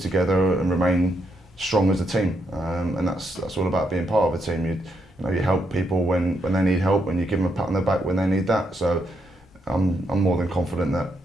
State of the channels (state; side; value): normal; both; correlation 0.78